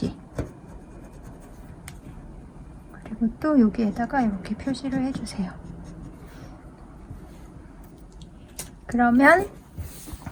그리고 또 여기에다가 이렇게 표시를 해주세요. 그러면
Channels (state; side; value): identical; both; correlation 1.00